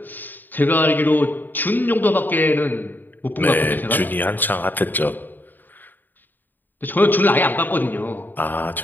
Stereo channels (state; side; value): late; right; 0.090 ms